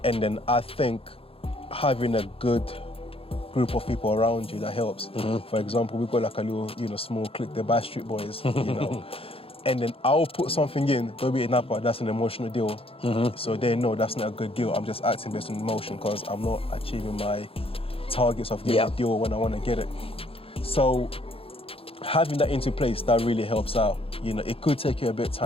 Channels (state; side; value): late; right; 0.27 ms